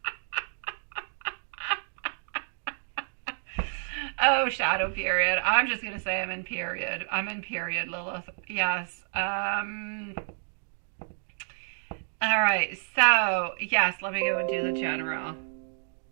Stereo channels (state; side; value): silent; left; digital silence